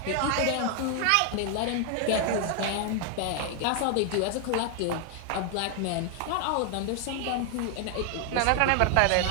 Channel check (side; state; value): both; different; correlation 0.00